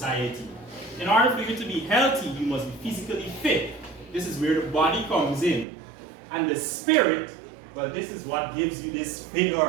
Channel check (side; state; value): left; drops out; at 5.7 s